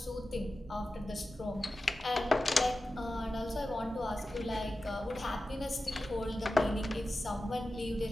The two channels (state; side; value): normal; both; correlation 0.94